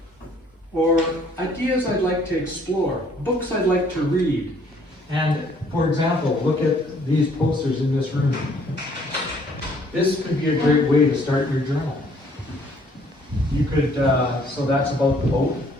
or ideas I'd like to explore, books I'd like to read. And for example, look at these posters in this room. This could be a great way to start your journal. You could, so that's about the boat.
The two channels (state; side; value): normal; both; correlation 0.61